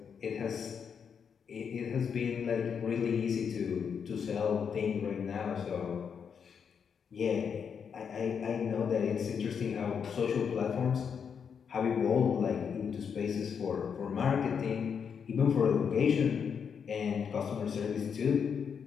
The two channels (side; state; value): right; quieter; 6.9 dB